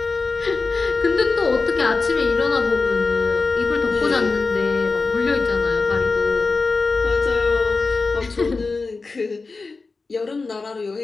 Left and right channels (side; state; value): right; quieter; 4.1 dB